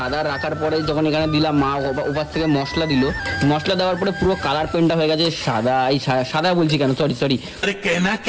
রাখার পরে যখন এখানে দিলাম, মা ওপার থেকে মশলা দিল, মশলা দেওয়ার পরে পুরো কালার পেনটা হয়ে গেছে সাদা। এই সাদা বলছি কেন, সরি,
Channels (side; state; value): both; identical; correlation 1.00